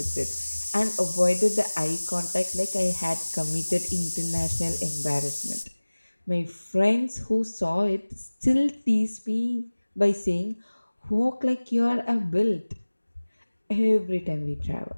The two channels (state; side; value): inverted; both; correlation -1.00